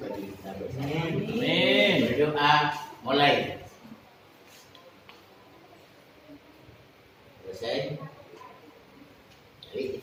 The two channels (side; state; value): both; identical; correlation 1.00